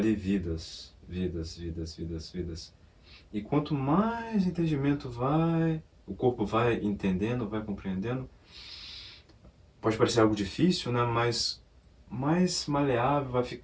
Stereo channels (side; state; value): both; identical; correlation 1.00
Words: vidas, vidas. E quanto mais entendimento o corpo vai entendendo, vai compreendendo, pode parecer algo difícil, né? Mas mais maleável vai